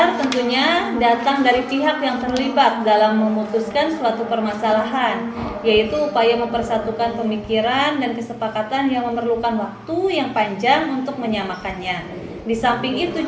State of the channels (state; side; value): identical; both; correlation 1.00